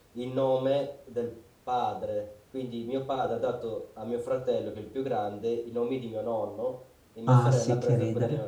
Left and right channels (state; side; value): identical; both; correlation 1.00